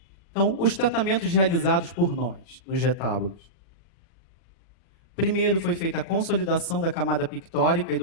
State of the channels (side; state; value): right; late; 40 ms